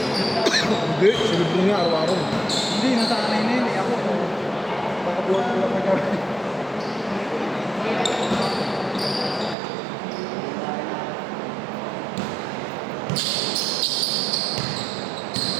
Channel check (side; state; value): left; drops out; at 9.6 s